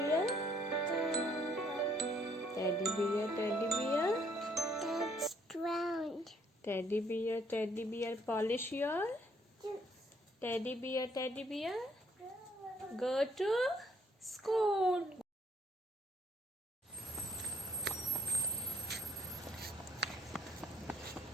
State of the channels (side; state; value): both; normal; correlation 0.66